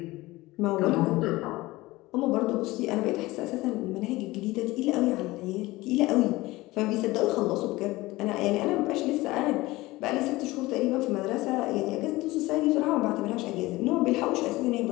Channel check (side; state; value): right; quieter; 19.7 dB